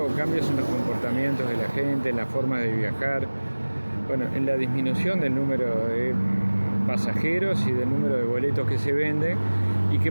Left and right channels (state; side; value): inverted; both; correlation -1.00